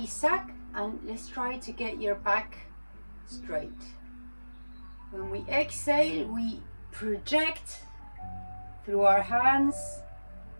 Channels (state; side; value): inverted; both; correlation -1.00